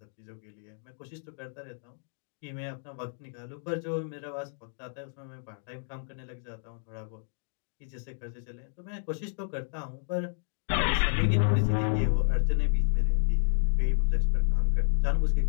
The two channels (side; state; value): right; silent; digital silence